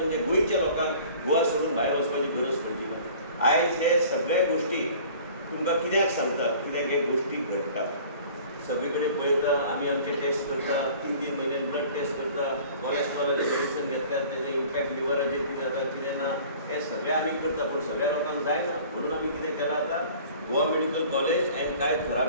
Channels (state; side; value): inverted; both; correlation -0.47